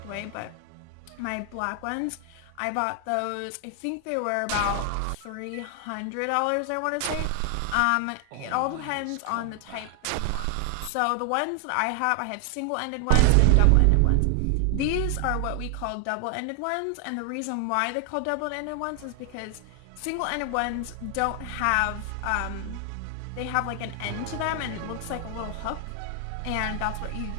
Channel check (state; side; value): different; both; correlation 0.00